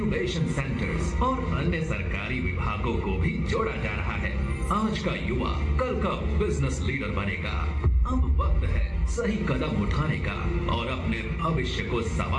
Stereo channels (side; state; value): both; identical; correlation 1.00